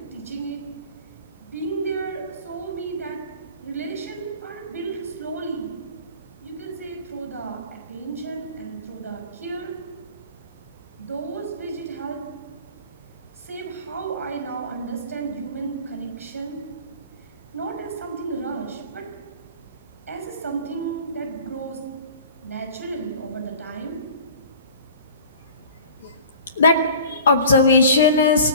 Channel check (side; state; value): both; inverted; correlation -0.43